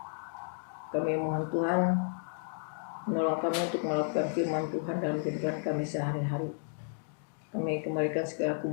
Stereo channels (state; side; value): silent; right; digital silence